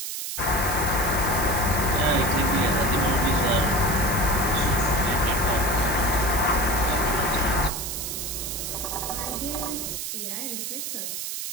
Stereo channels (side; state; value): right; noise; hiss, 5 dB below the sound